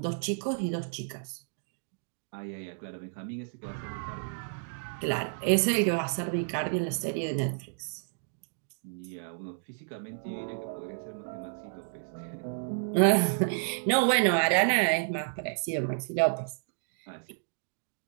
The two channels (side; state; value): left; silent; digital silence